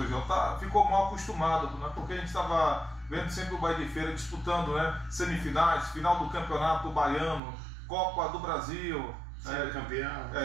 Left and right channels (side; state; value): left; drops out; at 7.4 s